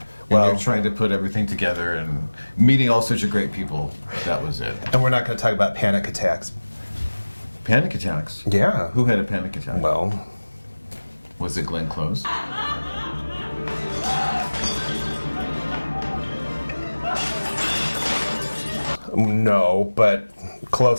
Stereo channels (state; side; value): inverted; both; correlation -1.00